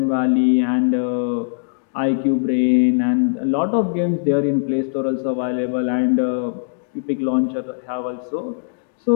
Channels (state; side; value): silent; right; digital silence